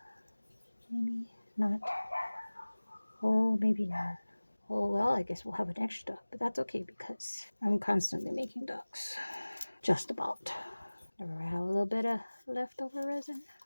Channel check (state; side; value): inverted; both; correlation -1.00